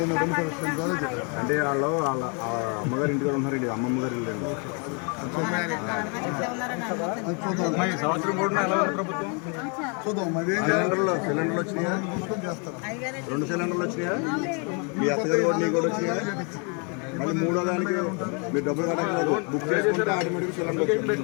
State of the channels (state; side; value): quieter; right; 36.0 dB